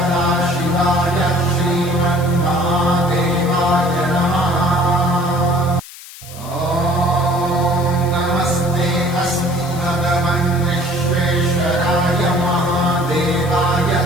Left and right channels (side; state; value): left; noise; hiss, 17 dB below the sound